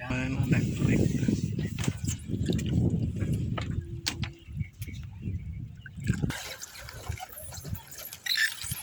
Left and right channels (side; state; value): both; identical; correlation 1.00